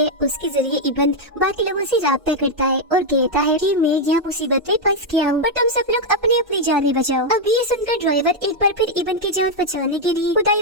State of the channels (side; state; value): left; late; 1.5 ms